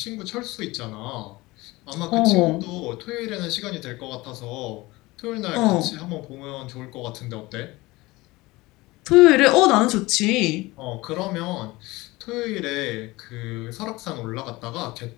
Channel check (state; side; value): quieter; right; 21.0 dB